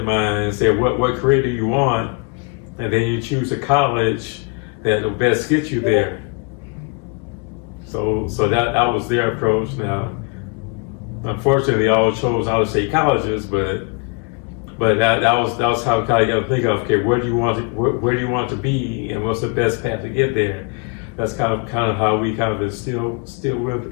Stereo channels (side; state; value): right; quieter; 31.3 dB